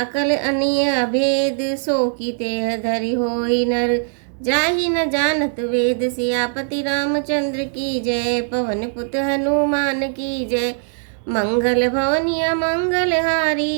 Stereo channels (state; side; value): silent; left; digital silence